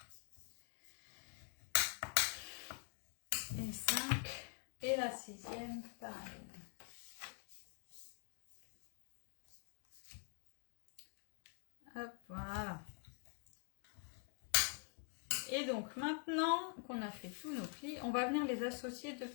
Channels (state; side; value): quieter; right; 38.5 dB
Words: Et 5. Et la 6e, pareil. Hop, voilà. Et donc maintenant qu'on a fait tous nos plis, on va venir les associer 2